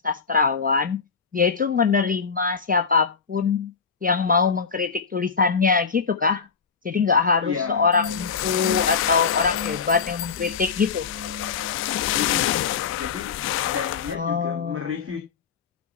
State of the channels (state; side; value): quieter; right; 5.6 dB